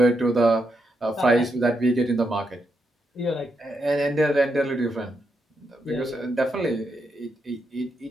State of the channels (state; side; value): normal; both; correlation 0.82